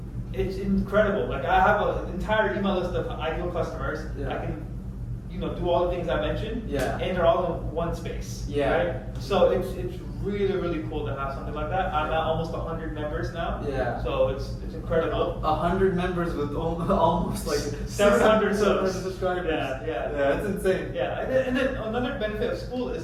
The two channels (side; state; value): both; identical; correlation 1.00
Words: it's incredible. Like I have an entire email list of ideal customers. Yeah. I can do all the things I mentioned, Yeah. and they're all in one space. Yeah. Right? So it's really, really cool to have something like that. I'm at almost 100 members now. Yeah. So it's incredible. 100 members with almost like 700 subscribers. Yeah, yeah. Yeah, it's insane. Yeah, and then another benefit of school is